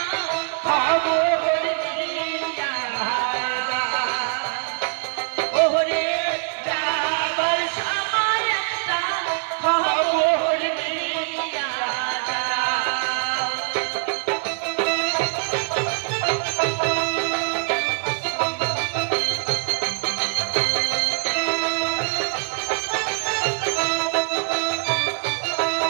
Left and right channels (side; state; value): left; silent; 57 dB below the other